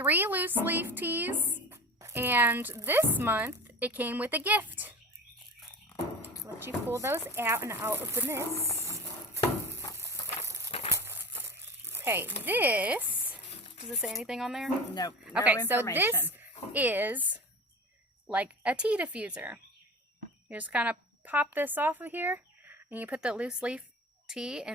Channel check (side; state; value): both; normal; correlation 0.34